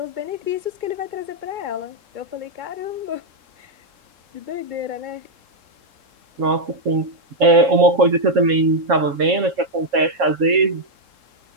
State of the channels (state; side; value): late; left; 3.7 ms